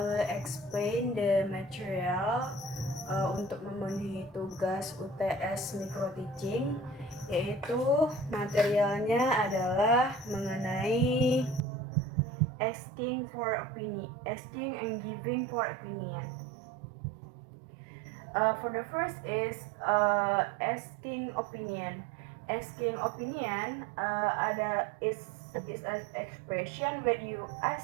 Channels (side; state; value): left; drops out; at 11.7 s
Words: explain the material untuk memenuhi tugas UTS micro teaching, yaitu materialnya adalah mengenai asking and giving for opinion. For the first is asking opinion. Asking opinion is an expression when you